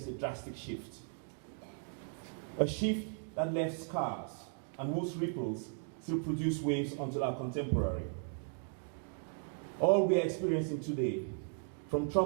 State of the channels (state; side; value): silent; left; 53 dB below the other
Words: a drastic shift. A shift that left scars and whose ripples still produce waves until our contemporary. All we are experiencing today, from